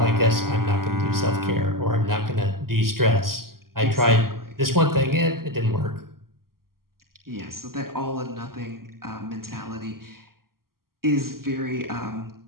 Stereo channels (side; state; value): left; late; 0.92 ms